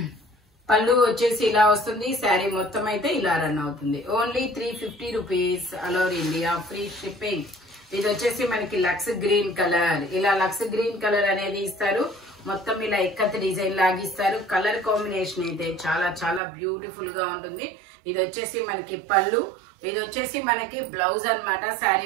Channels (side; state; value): left; drops out; at 16.4 s